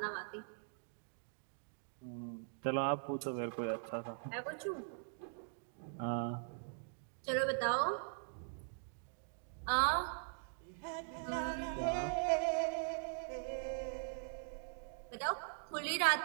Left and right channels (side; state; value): left; silent; digital silence